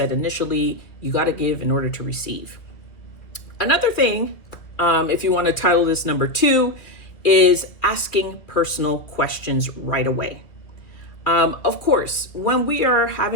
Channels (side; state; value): right; late; 2.2 ms